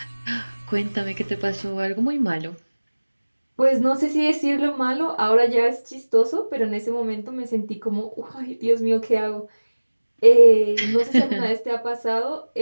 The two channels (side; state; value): both; inverted; correlation -1.00